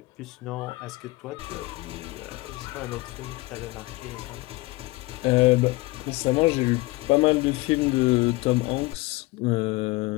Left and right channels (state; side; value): quieter; right; 21.9 dB